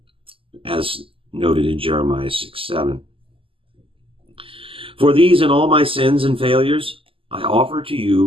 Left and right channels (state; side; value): late; left; 0.26 ms